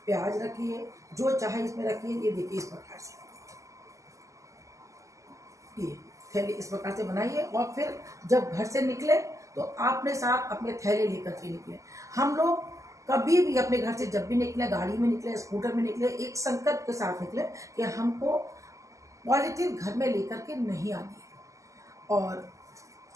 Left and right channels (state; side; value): late; left; 0.16 ms